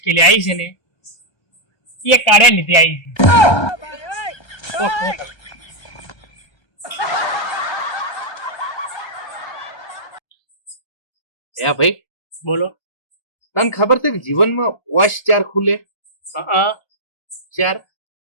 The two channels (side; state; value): right; late; 1.3 ms